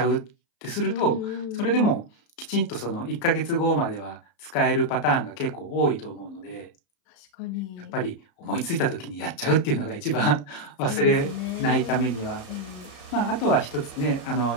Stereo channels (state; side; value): late; right; 34 ms